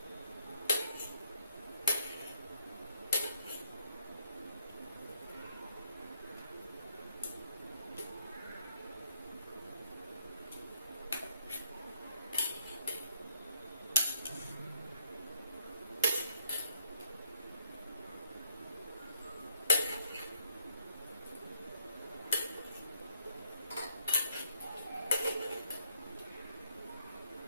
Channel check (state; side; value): inverted; both; correlation -0.69